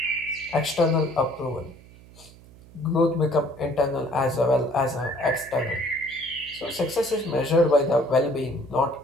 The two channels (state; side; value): noise; right; hum, 22 dB below the sound